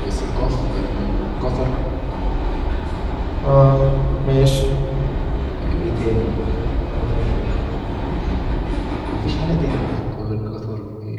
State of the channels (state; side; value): identical; both; correlation 1.00